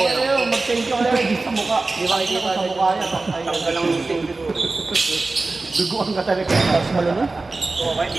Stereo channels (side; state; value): left; quieter; 3.5 dB